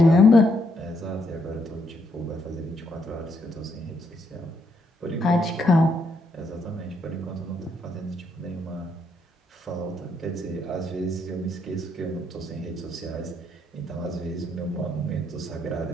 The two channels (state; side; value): normal; both; correlation 0.75